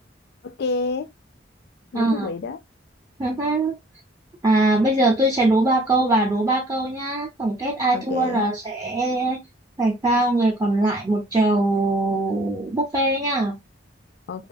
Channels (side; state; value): both; normal; correlation 0.54